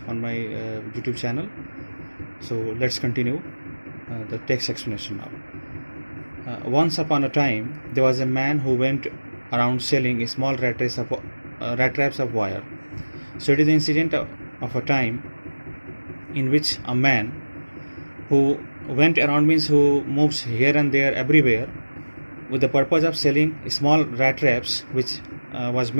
on my YouTube channel. So let's continue the text explanation now. Once upon a time there was a man who went around selling small rat traps of wire. So it is the incident of a time in which a man who went around, means who moves here and there everywhere, with the purpose of selling small rat traps which was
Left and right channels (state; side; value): inverted; both; correlation -1.00